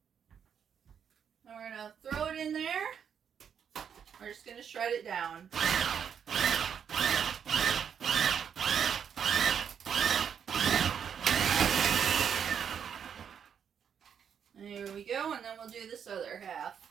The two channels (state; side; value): quieter; left; 7.8 dB